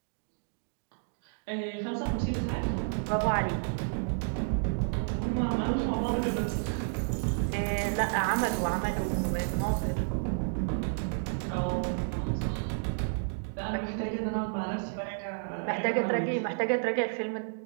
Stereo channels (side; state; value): left; silent; digital silence